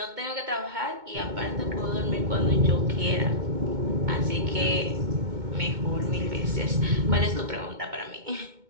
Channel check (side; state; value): left; late; 2.2 ms